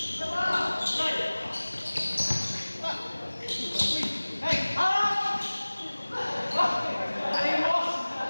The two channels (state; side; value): inverted; both; correlation -1.00